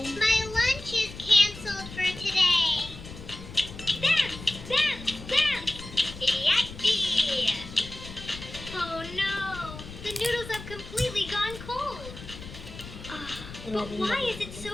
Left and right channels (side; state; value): left; noise; rumble, 13 dB below the sound